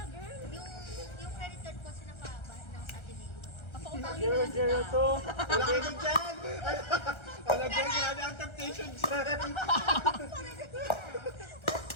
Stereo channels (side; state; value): right; late; 1.3 ms